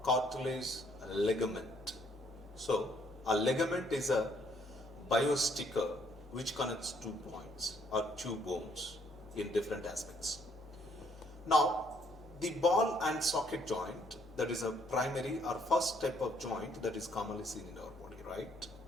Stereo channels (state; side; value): normal; both; correlation 0.66